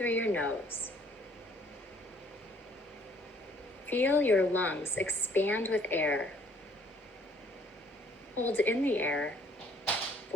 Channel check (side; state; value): both; normal; correlation 0.60